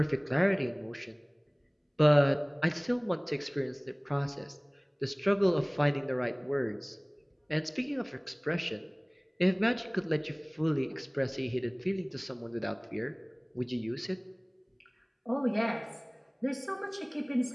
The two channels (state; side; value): identical; both; correlation 1.00